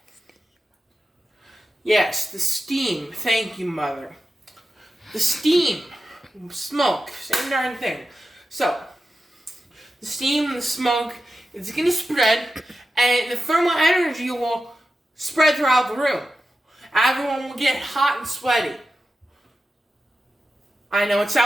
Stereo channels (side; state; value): both; normal; correlation 0.91